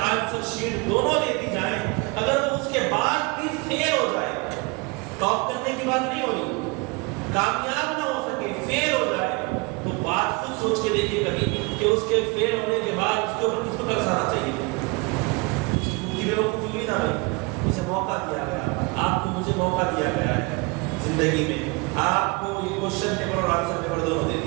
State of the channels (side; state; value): left; quieter; 28.0 dB